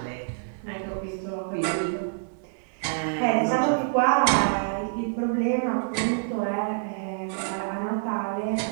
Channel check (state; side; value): silent; left; digital silence